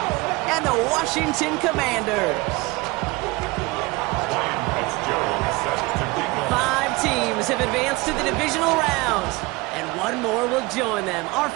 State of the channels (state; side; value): quieter; left; 23.2 dB